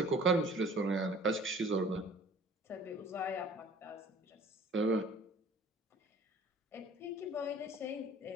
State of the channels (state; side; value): normal; both; correlation 0.49